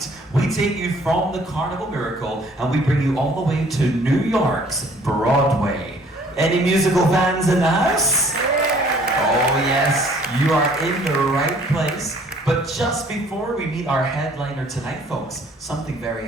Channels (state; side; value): normal; both; correlation 0.57